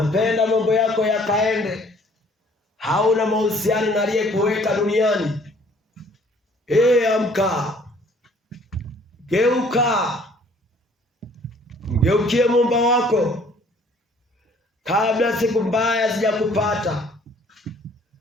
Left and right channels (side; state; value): both; normal; correlation 0.57